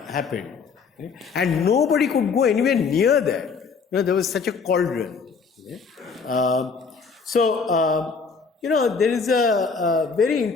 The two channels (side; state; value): right; quieter; 5.2 dB